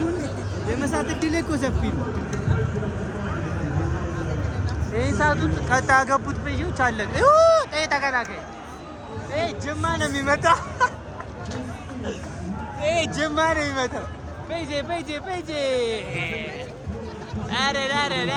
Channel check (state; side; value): identical; both; correlation 1.00